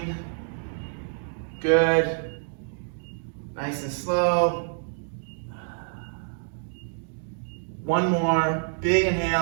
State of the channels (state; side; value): silent; left; digital silence